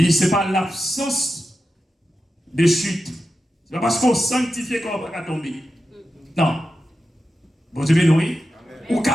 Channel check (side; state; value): both; normal; correlation 0.90